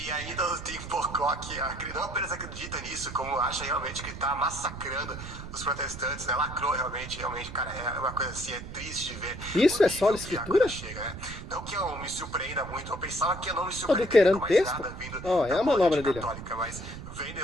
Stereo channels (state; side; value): noise; right; rumble, 11 dB below the sound